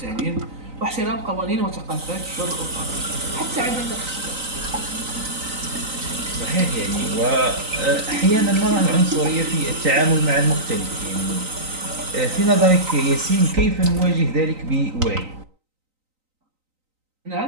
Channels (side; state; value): left; late; 3.9 ms